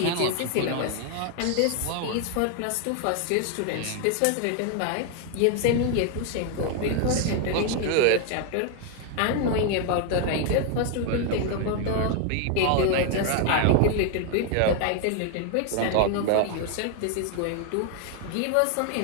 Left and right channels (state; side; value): different; both; correlation 0.00